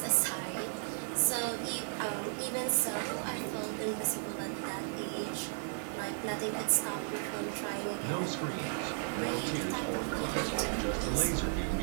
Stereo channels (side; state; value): left; silent; digital silence